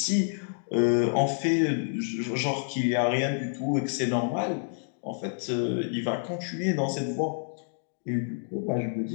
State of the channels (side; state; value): right; silent; digital silence